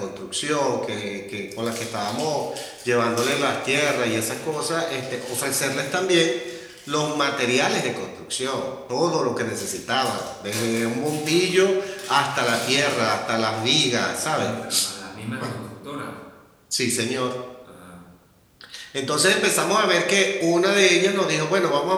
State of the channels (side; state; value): both; identical; correlation 1.00